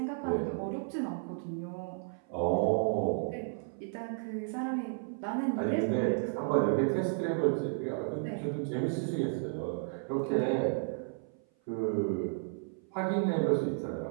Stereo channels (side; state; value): left; silent; 55 dB below the other